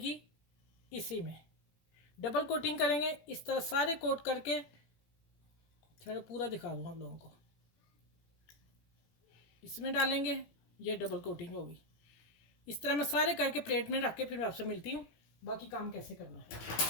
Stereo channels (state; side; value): late; right; 17 ms